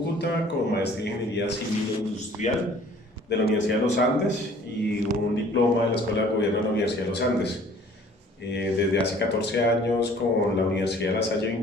con maestría en Ingeniería Civil e Industrial de la Universidad de los Andes y un diploma de la Escuela de Gobierno de la Universidad de los Andes. Desde hace 14 años con la Universidad de La Salle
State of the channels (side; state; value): both; normal; correlation 0.53